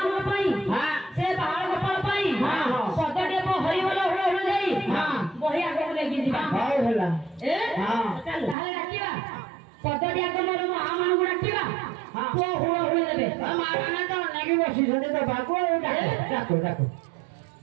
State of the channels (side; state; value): left; drops out; at 8.6 s